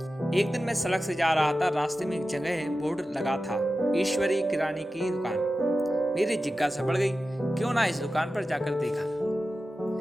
एक दिन मैं सड़क से जा रहा था। रास्ते में एक जगह बोर्ड लगा था, ईश्वरी किराने की दुकान। मेरी जिज्ञासा बढ़ गई, क्यों ना इस दुकान पर जाकर देखा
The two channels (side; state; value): both; normal; correlation 0.93